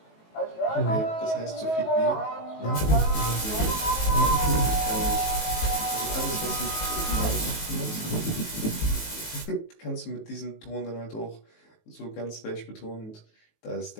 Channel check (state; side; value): late; right; 19 ms